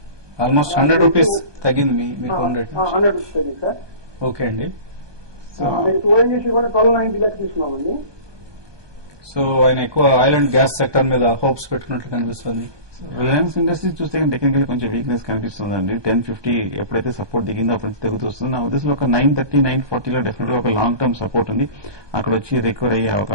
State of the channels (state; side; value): late; left; 1.2 ms